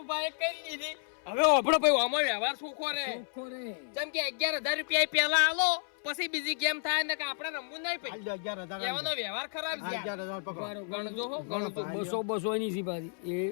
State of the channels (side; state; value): right; silent; 57 dB below the other